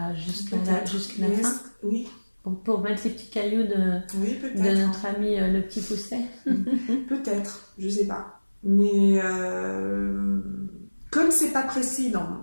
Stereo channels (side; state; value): both; inverted; correlation -1.00